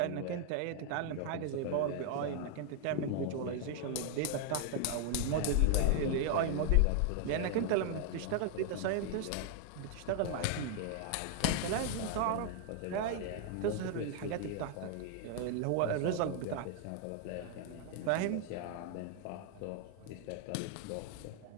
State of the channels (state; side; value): different; both; correlation 0.00